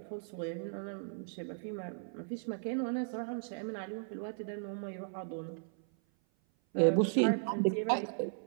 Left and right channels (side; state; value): left; silent; 54 dB below the other